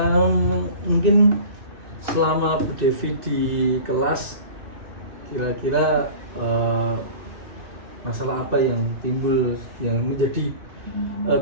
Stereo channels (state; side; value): late; left; 2.6 ms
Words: mungkin selama Bu Devi di kelas kira-kira masalah apa yang timbul yang menjadi